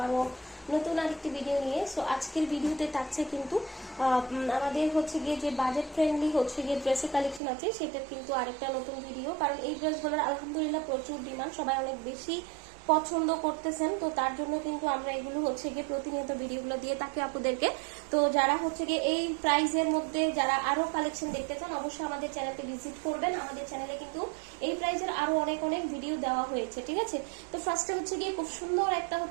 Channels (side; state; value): left; drops out; at 7.4 s